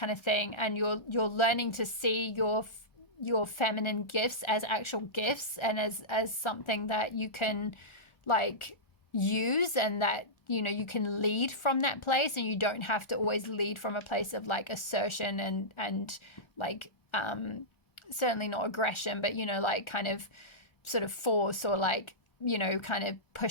of thing, and you're learning to see your feminine gifts as actual gifts and as something that you can like use, and that, you know, you can lead from that place, and you don't have to always lead from a place of like assertion and like certainly not aggression, but, you know, like kind of sort of force or like, you know, kind of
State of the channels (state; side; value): late; right; 1.4 ms